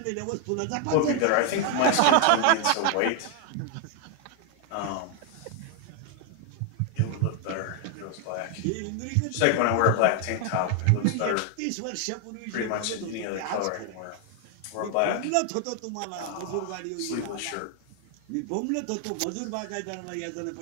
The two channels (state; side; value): different; both; correlation 0.00